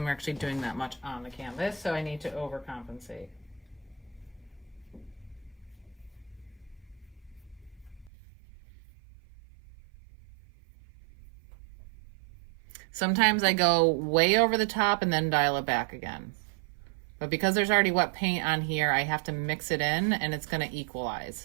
actually doing that much on the canvas, so I need to overcompensate. Sometimes I go way over the top and then dial it back again. But because there's already wet paint on here, I have to mix it in, and it's going to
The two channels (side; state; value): left; drops out; at 8.1 s